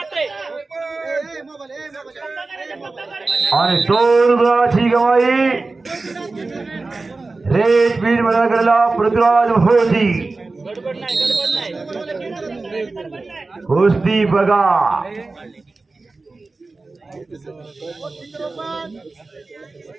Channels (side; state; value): left; quieter; 3.6 dB